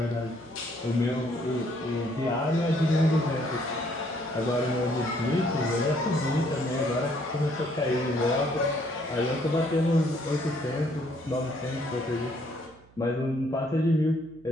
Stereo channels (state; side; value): noise; right; hum, 27 dB below the sound